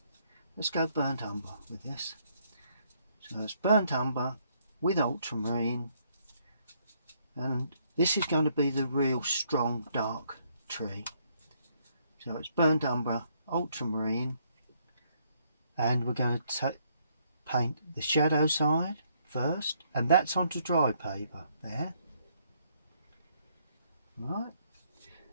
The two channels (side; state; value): both; inverted; correlation -0.70